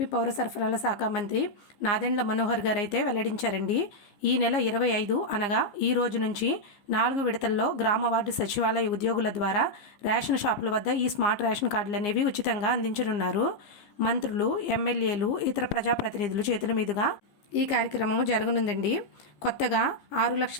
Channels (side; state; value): right; late; 15 ms